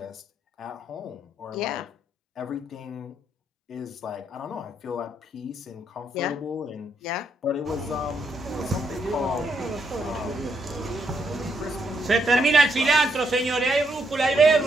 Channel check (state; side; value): normal; both; correlation 0.77